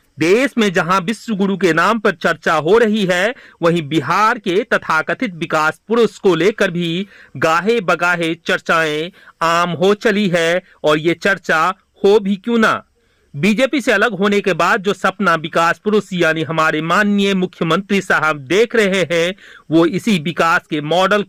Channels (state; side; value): identical; both; correlation 1.00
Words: देश में जहां विश्व गुरु के नाम पर चर्चा हो रही है, वहीं बिहार के तथाकथित विकास पुरुष को लेकर भी गाहे बगाहे चर्चाएं आम हो चली है। और ये चर्चा हो भी क्यों ना। बीजेपी से अलग होने के बाद जो सपना विकास पुरुष यानी हमारे माननीय मुख्यमंत्री साहब देख रहे हैं, वो इसी विकास के मॉडल